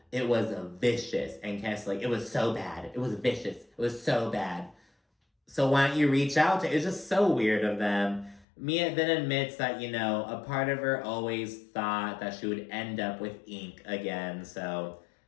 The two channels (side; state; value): right; drops out; at 8.5 s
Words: It was vicious. And Candiace's like, it was so bad. It was vicious. It was so bad. So why don't you reach out to? It's just so weird of them. Mia then admits that, a part of her always thought that she would end up with ink again. So